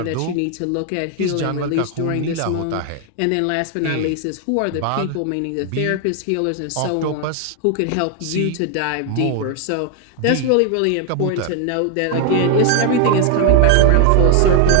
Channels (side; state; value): both; different; correlation 0.00